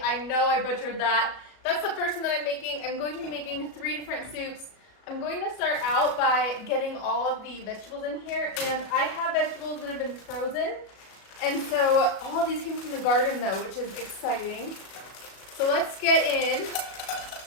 I know I butchered that. That's the first one that I'm making. I'm going to be making 3 different soups. I'm going to start out by getting all of the vegetables in here, and I have vegetables that have been frozen. And so all of these came from the garden though, which is exciting. So let's get in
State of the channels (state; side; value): late; right; 37 ms